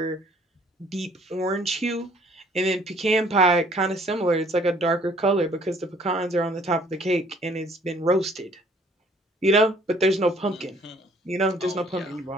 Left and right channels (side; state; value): both; normal; correlation 0.59